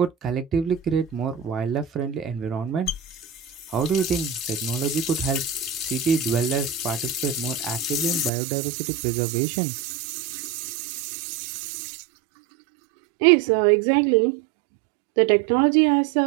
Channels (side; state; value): left; drops out; at 8.3 s